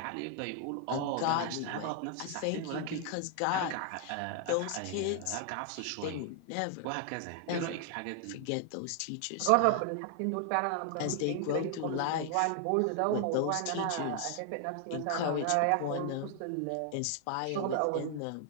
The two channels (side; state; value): both; different; correlation 0.00